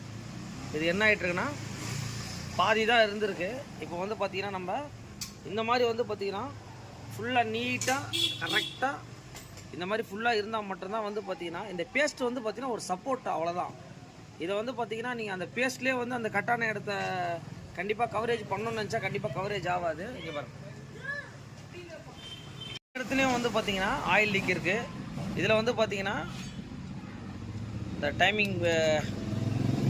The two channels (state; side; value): identical; both; correlation 1.00